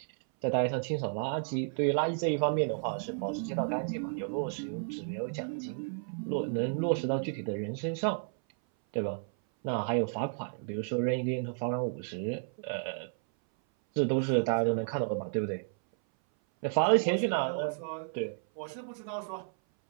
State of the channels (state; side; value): silent; left; 56 dB below the other